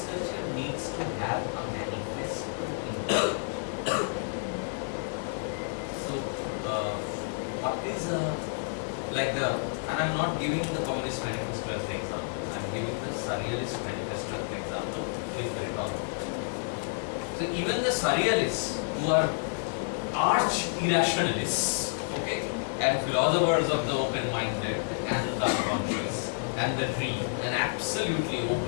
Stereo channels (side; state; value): right; silent; digital silence